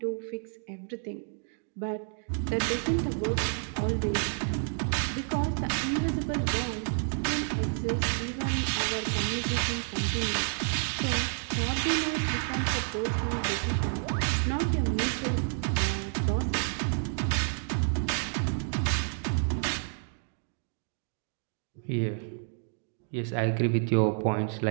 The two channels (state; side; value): silent; left; 58 dB below the other